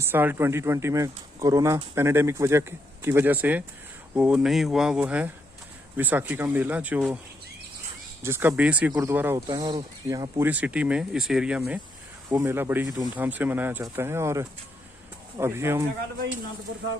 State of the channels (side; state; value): both; normal; correlation 0.78